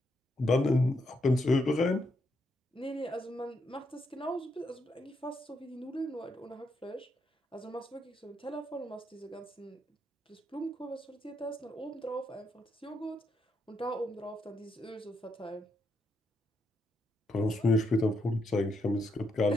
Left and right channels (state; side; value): normal; both; correlation 0.79